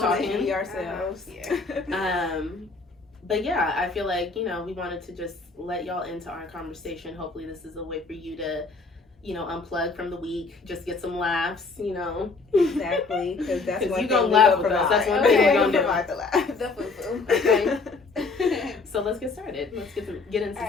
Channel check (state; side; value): quieter; right; 4.0 dB